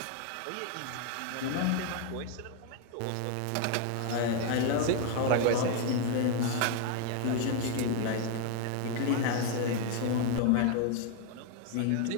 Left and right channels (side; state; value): both; different; correlation 0.01